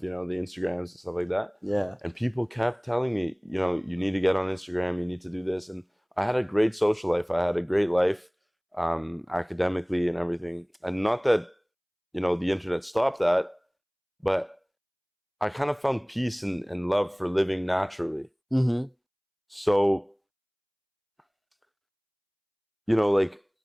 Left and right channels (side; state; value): both; identical; correlation 1.00